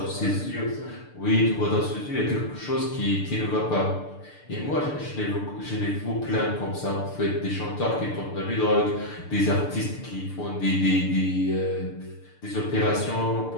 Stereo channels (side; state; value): right; late; 6.8 ms